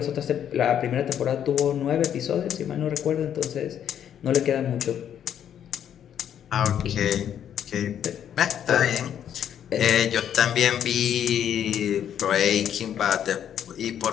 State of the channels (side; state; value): right; quieter; 9.5 dB